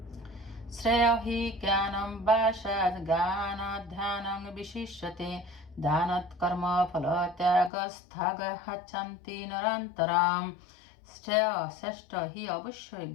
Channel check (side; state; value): right; drops out; at 7.7 s